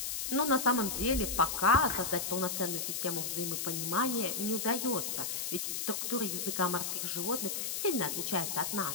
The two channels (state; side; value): noise; left; hiss, 2 dB below the sound